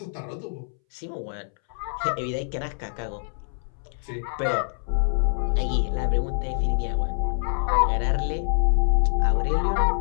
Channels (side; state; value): right; silent; 61 dB below the other